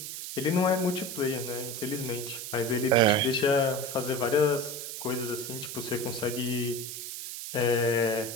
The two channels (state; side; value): noise; right; hiss, 7 dB below the sound